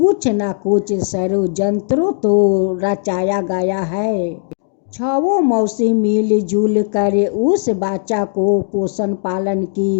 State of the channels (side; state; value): right; silent; digital silence